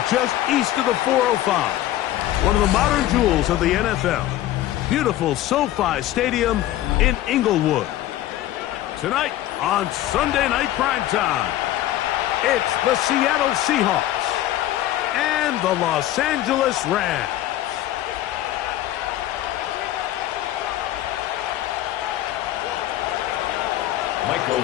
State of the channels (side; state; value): right; quieter; 13.9 dB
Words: just east of the 405. One of the modern jewels of the NFL. Beautiful SoFi Stadium in Inglewood. Tonight on Sunday Night Primetime, it's the Seattle Seahawks and the Los Angeles Rams. Michael